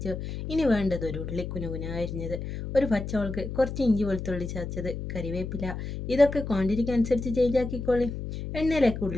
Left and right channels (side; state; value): left; noise; hum, 6 dB below the sound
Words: ഇനി വേണ്ടത് ഒരു ഉള്ളി കുനുകുന അരിഞ്ഞത്, ഒരു പച്ചമുളക്, കുറച്ച് ഇഞ്ചി വെളുത്തുള്ളി ചതച്ചത്, കരിവേപ്പില. ഇതൊക്കെ ക്വാണ്ടിറ്റിക്ക് അനുസരിച്ച് ചേഞ്ച് ആക്കിക്കോളി. എണ്ണയിലേക്ക്